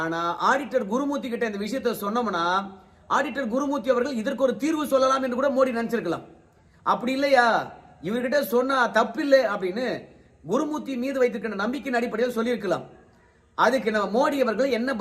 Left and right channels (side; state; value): both; identical; correlation 1.00